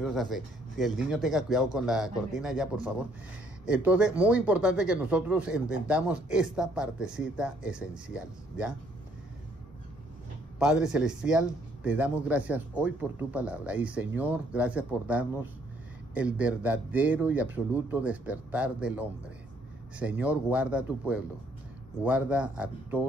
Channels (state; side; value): normal; both; correlation 0.66